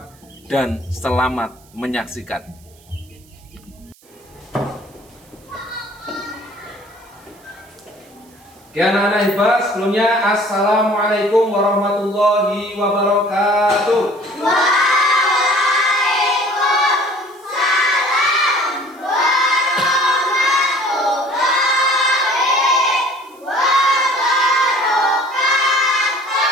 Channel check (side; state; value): right; noise; hiss, 29 dB below the sound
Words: dan selamat menyaksikan. Oke anak-anak hebat, sebelumnya Assalamualaikum warahmatullahi wabarakatuh. Waalaikumsalam warahmatullahi wabarakatuh.